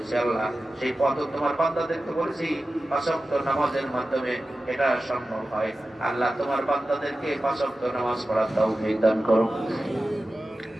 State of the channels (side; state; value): both; normal; correlation 0.94